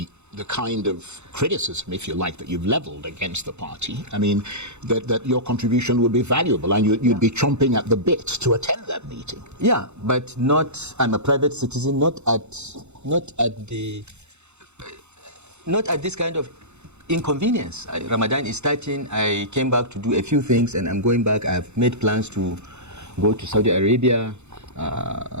kind of criticism, if you like, that you've leveled against the party, I mean, that your contribution would be valuable, and you'd be chomping at the bit to attend that meeting. Yeah, but not. I'm a private citizen, not at this kind of inconvenience. Ramadan is starting. I came back to do a few things, and I'm going back. I've made plans to go to Saudi Arabia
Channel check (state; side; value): late; left; 0.82 ms